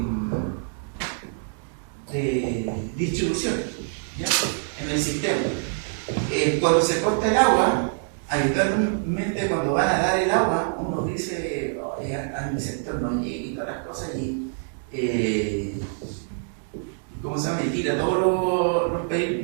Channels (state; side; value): silent; left; digital silence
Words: distribución, ¿ya? En el sistema. Cuando se corta el agua, habitualmente cuando van a dar el agua, uno dice, a mi sector no llegue y todas las cosas y ¿cómo se llama? Y tira todos los